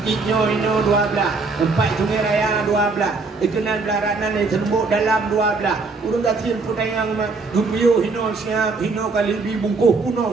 ini 12 tempat sungai raya 12 ikenan belaranan yang terembuk dalam 12 urang kecil putayang gupiyo hino siap hino kali dibungkuh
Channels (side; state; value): left; quieter; 4.0 dB